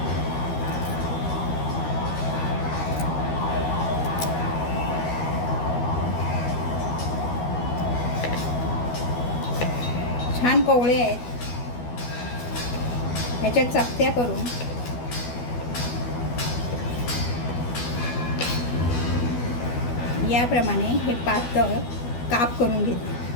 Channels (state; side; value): late; right; 12 ms